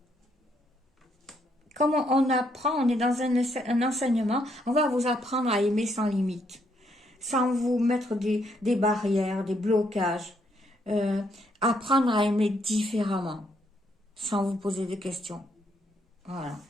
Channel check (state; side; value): normal; both; correlation 0.73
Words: comme on apprend, on est dans un enseignement, on va vous apprendre à aimer sans limite, sans vous mettre des barrières, des blocages. Euh, Apprendre à aimer différemment, sans vous poser de questions. Voilà.